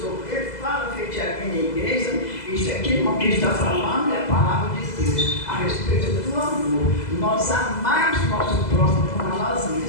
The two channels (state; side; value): late; right; 2.0 ms